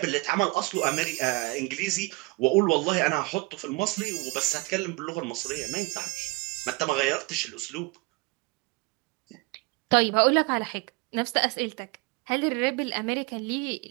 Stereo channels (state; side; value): quieter; left; 25.1 dB